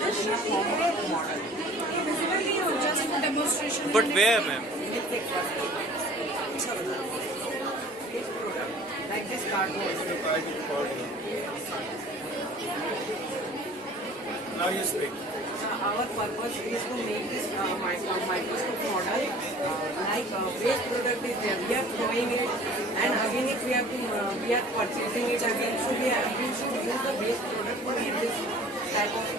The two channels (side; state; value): both; normal; correlation 0.47